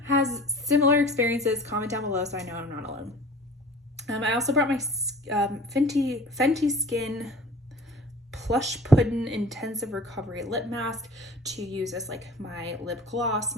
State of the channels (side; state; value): both; normal; correlation 0.44